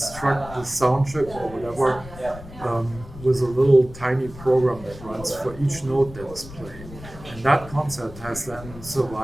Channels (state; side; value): noise; left; rumble, 15 dB below the sound